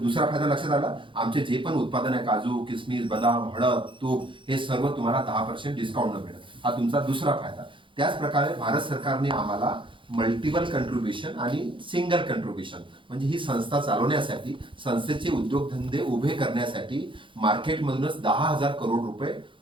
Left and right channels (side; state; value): left; late; 0.24 ms